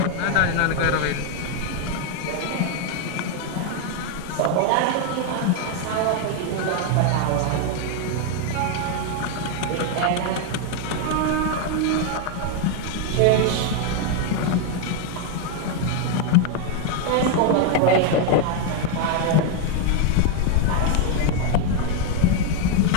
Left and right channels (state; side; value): different; both; correlation 0.01